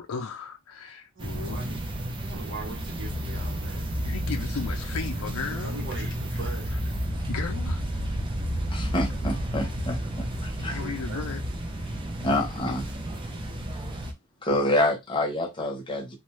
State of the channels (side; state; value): both; normal; correlation 0.57